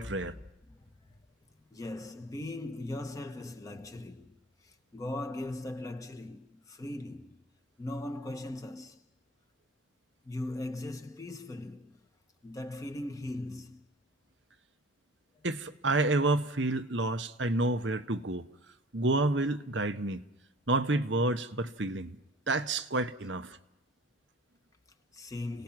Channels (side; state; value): both; normal; correlation 0.44